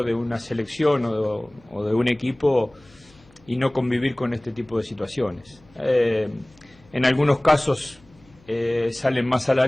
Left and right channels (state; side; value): noise; left; hum, 29 dB below the sound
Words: de una selección o de un equipo y no convivir con este tipo de situaciones. En algunos casos salen más a la